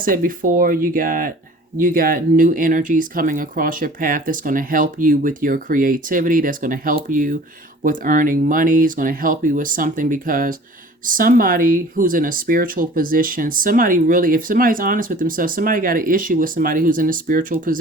before, you got new energies coming across your path that's going to help you with your creativity. That's going to help you with earning money. It's going to help you with something, because somebody who's in a spiritual position, if somebody's honest with themselves, somebody got an issue with somebody who's in a spiritual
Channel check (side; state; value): both; normal; correlation 0.47